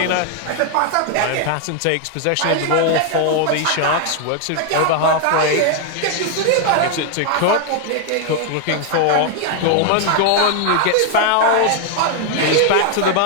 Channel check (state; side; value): different; both; correlation 0.00